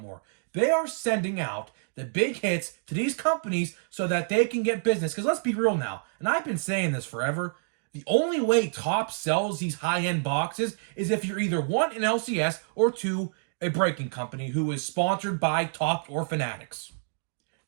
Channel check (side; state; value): left; silent; digital silence